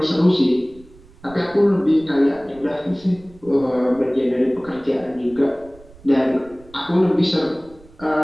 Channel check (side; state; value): right; noise; rumble, 24 dB below the sound